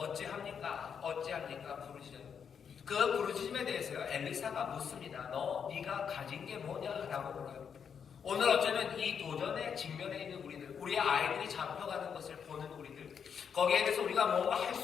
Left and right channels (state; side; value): quieter; right; 7.1 dB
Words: 부르짖어요. 그 부르짖음에 대해서요, 엘리사가 묻습니다. 네가 가진 게 뭐냐라고 물어요. 오늘 어쩌면 이 도전에 직면해 있는 우리들, 우리의 아이들이 잡혀가는 것을 보는 우리들, 거기에 대해서 우리가 뭔가 할